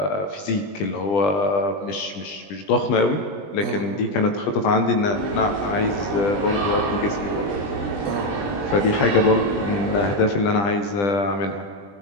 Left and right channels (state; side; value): late; right; 20 ms